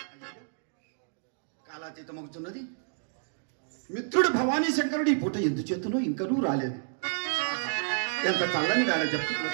కాలాతీతమవుతున్నది. మిత్రుడు భవానీ శంకరుడు ఈ పూట ఎందుచేతనో ఇంకనూ రాలేదు. ఎంత చల్లని వేళ చెప్తూ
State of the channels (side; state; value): left; silent; digital silence